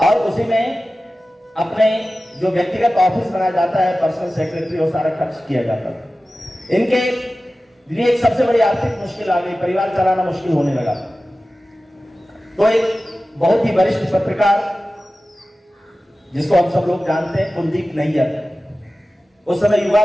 उसी में अपने जो व्यक्तिगत ऑफिस बनाया जाता है, पर्सनल सेक्रेटरी, वो सारा खर्च किया जाता था। इनके लिए एक सबसे बड़ी आर्थिक मुश्किल आ गई, परिवार चलाना मुश्किल होने लगा। तो एक बहुत ही वरिष्ठ पत्रकार जिसको हम सब लोग जानते हैं, कुलदीप नैयर, उस समय युवा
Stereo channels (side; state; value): both; normal; correlation 0.95